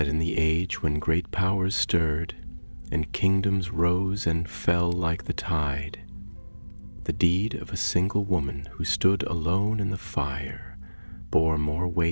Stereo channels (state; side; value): inverted; both; correlation -1.00